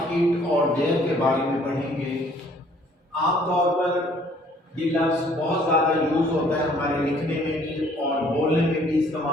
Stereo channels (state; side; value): normal; both; correlation 0.59